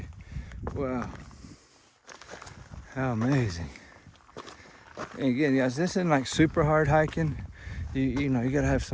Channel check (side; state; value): both; identical; correlation 1.00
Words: Wow. How amazing. And again, guys, this isn't like super hard hiking. You know, you gotta have